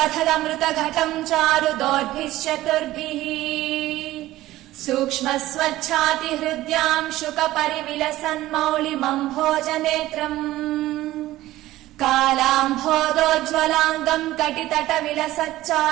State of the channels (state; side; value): quieter; left; 15.9 dB